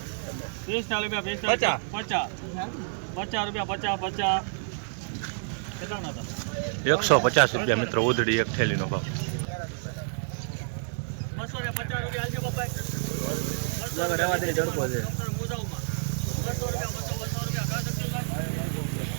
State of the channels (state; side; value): silent; left; digital silence